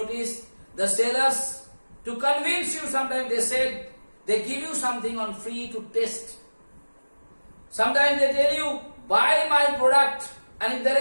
the sellers, to convince you, sometimes they said, they give you something on free to test. Sometimes they tell you, buy my product, and if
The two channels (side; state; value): both; inverted; correlation -1.00